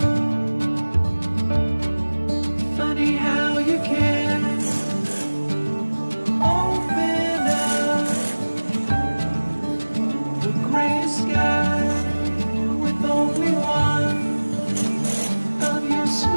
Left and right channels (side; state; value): both; inverted; correlation -1.00